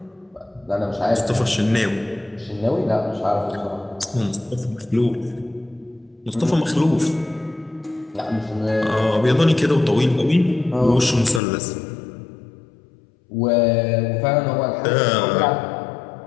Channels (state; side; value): drops out; right; at 11.4 s